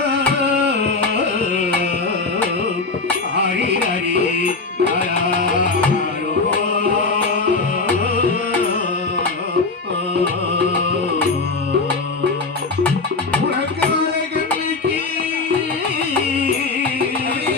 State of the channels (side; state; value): right; quieter; 3.9 dB